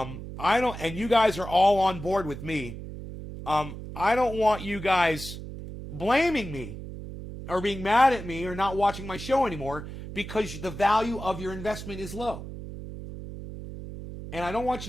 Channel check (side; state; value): right; noise; hum, 10 dB below the sound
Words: don't, and you guys are all on board with me, I don't want you guys blaming me or being mad at me or not watching my show anymore because the value of your investment is low. And I don't want